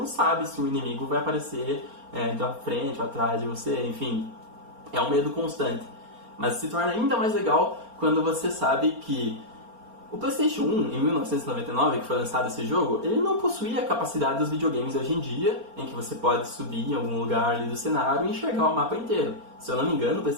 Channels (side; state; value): left; late; 4.3 ms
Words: sabe se o inimigo vai aparecer da frente ou atrás de você, enfim, é um medo constante. Mas se torna ainda mais legal quando você sabe que o PlayStation 1, em 1999, que foi lançado esse jogo, ele não possuía a capacidade dos videogames hoje em dia, em que você pode subir em algum lugar ali do cenário e enxergar o mapa inteiro. Se eu não me engano, o